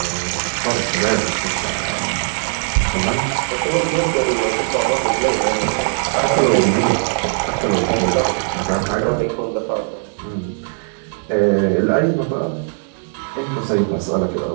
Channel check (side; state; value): left; silent; 59 dB below the other